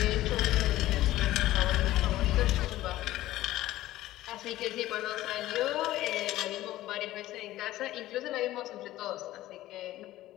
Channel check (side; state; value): right; quieter; 15.4 dB